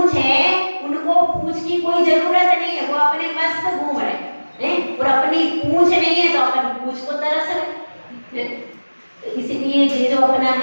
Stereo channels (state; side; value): inverted; both; correlation -1.00